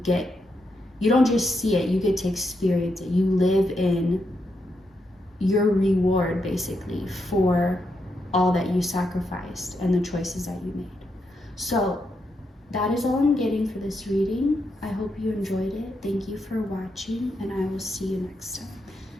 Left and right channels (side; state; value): both; normal; correlation 0.82